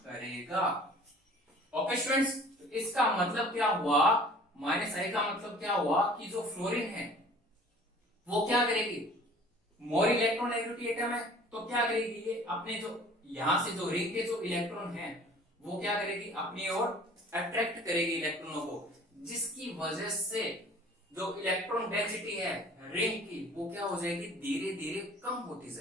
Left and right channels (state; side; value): normal; both; correlation 0.49